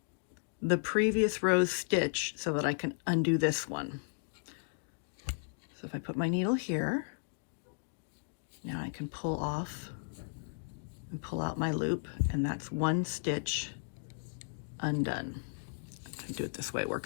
the previous row's stitch so that I can undo this one. So if I put my needle here, now I can pull off and pull out my loop, and that's one stitch undone. I do it this way, it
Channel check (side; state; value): right; silent; digital silence